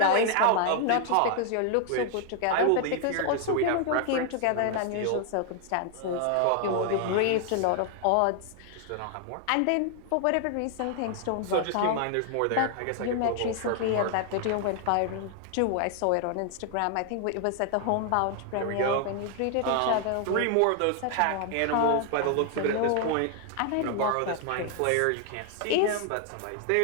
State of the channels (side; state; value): both; different; correlation 0.00